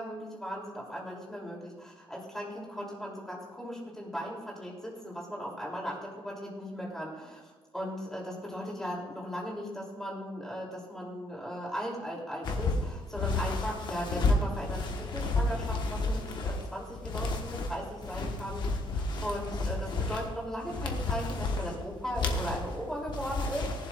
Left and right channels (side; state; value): both; normal; correlation 0.70